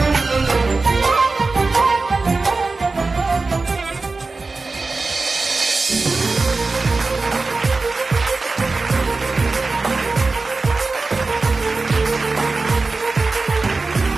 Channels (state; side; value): quieter; left; 3.7 dB